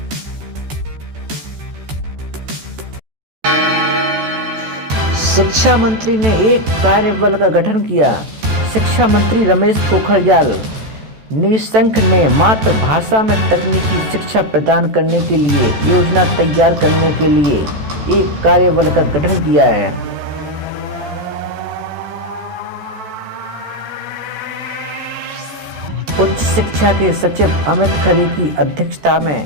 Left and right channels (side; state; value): left; late; 14 ms